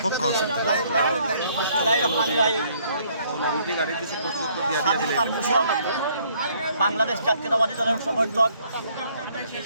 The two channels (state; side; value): inverted; both; correlation -0.64